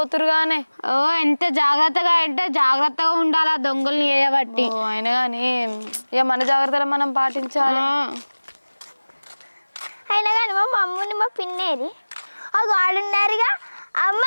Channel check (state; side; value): inverted; both; correlation -1.00